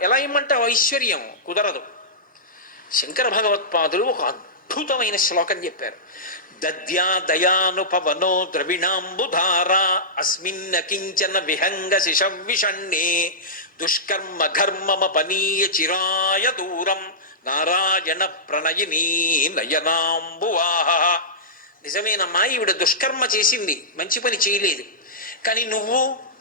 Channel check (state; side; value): normal; both; correlation -0.15